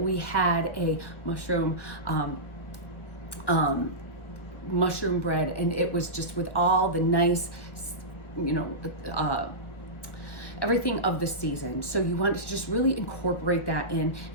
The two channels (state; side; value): late; right; 1.5 ms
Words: had a mushroom bread, and it was just with all the nice, everything of the season. So you want to just really incorporate that in,